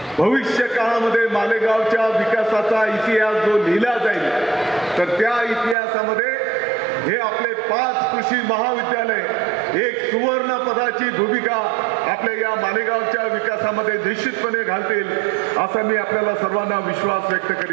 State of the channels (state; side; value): drops out; left; at 5.8 s